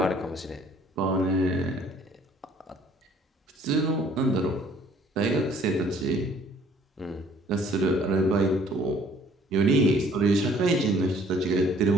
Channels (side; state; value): both; normal; correlation 0.58